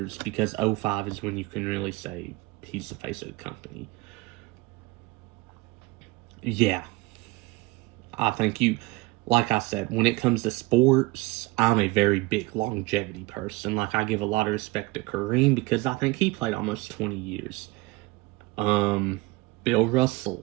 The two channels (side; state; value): left; quieter; 22.1 dB